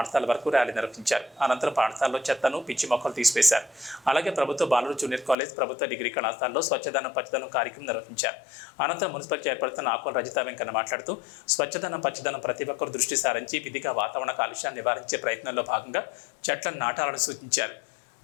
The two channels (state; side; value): drops out; right; at 5.4 s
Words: వరకు ర్యాలీ నిర్వహించారు. అనంతరం పాఠశాలలో చెత్తను, పిచ్చి మొక్కలు తీసివేశారు. అలాగే ప్రభుత్వ బాలుర జూనియర్ కాలేజ్, ప్రభుత్వ డిగ్రీ కళాశాలలో స్వచ్ఛదనం పచ్చదనం కార్యక్రమం నిర్వహించారు. అనంతరం మున్సిపల్ చైర్పర్సన్ ఆకుల రజిత వెంకన్న మాట్లాడుతూ స్వచ్ఛదనం పచ్చదనం ప్రతి ఒక్కరు దృష్టి సారించి విధిగా వాతావరణ కాలుష్యాన్ని నివారించే ప్రయత్నంలో భాగంగా చెట్లను నాటాలని సూచించారు.